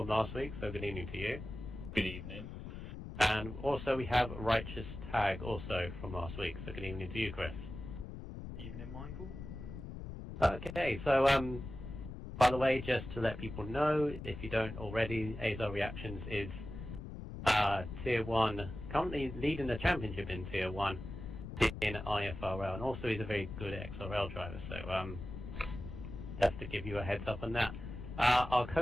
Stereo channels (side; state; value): left; noise; rumble, 9 dB below the sound